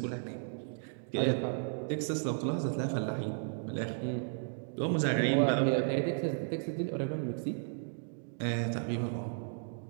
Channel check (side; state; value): left; silent; digital silence